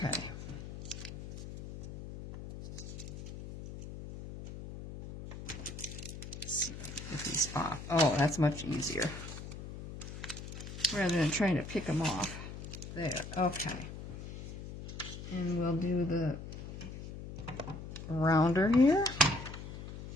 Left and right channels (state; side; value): noise; left; hum, 10 dB below the sound